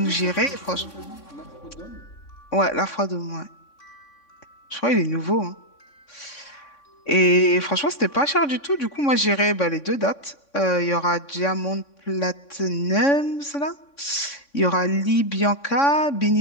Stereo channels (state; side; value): late; right; 3.6 ms